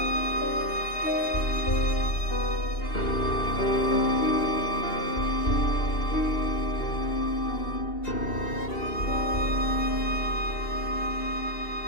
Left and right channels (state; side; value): late; right; 2.8 ms